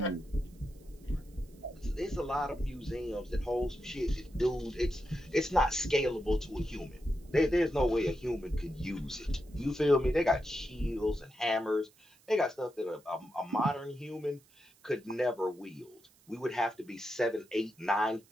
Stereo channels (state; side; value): noise; right; hiss, 30 dB below the sound